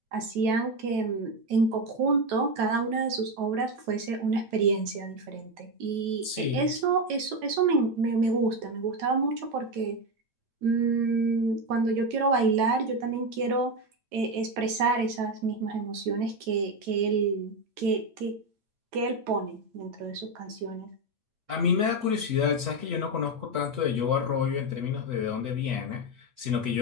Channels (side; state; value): left; late; 9.2 ms